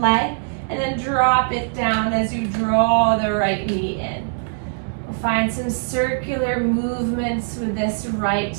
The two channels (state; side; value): silent; left; digital silence